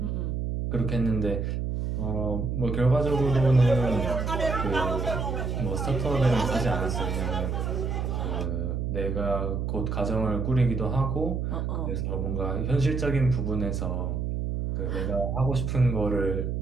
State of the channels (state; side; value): noise; right; hum, 1 dB below the sound